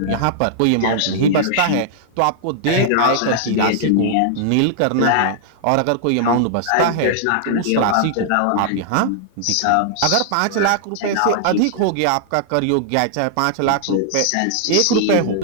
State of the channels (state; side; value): different; both; correlation -0.01